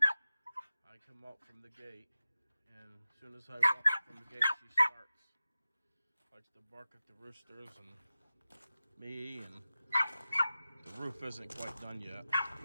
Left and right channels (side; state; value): both; inverted; correlation -0.95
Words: I come out from the gate, and as soon as I walk up from the gate, she starts. Likes to bark at the roosters and me, and the roof isn't quite done yet.